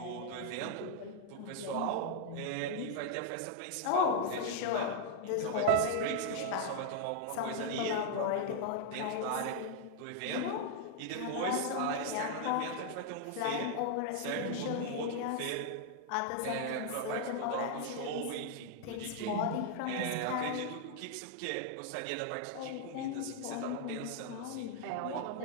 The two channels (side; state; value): both; different; correlation 0.00